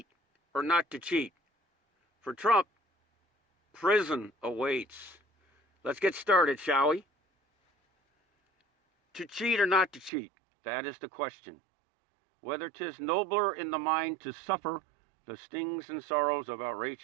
or Not to Cheat. For Trump, prison awaits. Let's get started, shall we? To cheat or not to cheat, that is the question. Whether 'tis nobler in the mind to suffer the stings and sorrows of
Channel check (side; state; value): left; drops out; at 10.1 s